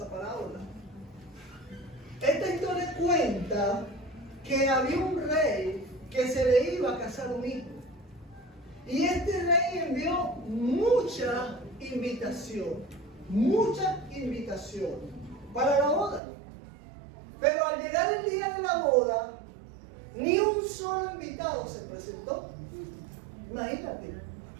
parábola. Esta historia cuenta que había un rey que se le iba a casar un hijo. Y este rey envió mucha invitación para la boda. Pero al llegar el día de la boda, ni un solo invitado se presentó. Imagínate,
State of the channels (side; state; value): left; drops out; at 16.2 s